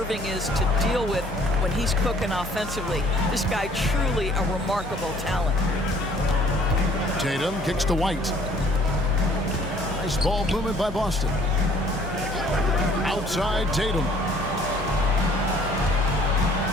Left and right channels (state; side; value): normal; both; correlation 0.58